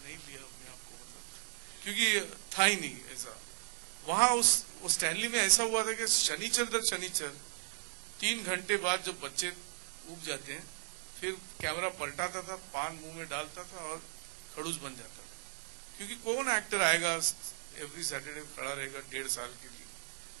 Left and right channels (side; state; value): left; silent; 53 dB below the other